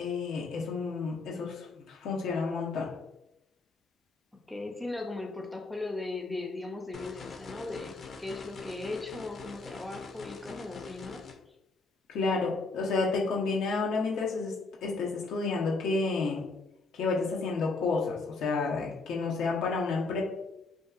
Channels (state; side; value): quieter; right; 3.6 dB